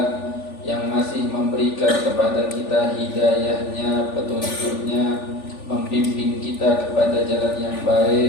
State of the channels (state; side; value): late; right; 3.4 ms